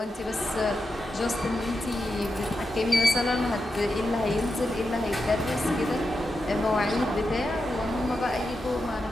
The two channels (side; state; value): both; normal; correlation 0.88